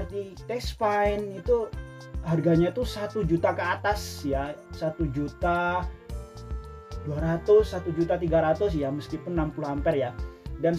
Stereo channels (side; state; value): both; identical; correlation 1.00